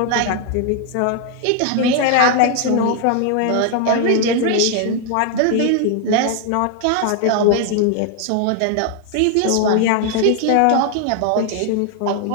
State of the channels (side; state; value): both; different; correlation 0.00